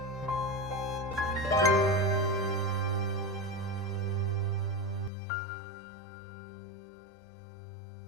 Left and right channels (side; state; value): right; drops out; at 5.1 s